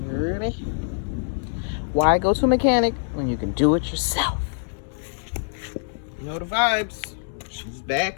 You ready? Why go to a mechanic when you can do it yourself? You know the vibes. She's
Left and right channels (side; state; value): right; silent; digital silence